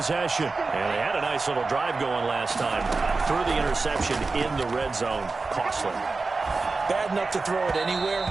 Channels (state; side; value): quieter; left; 3.9 dB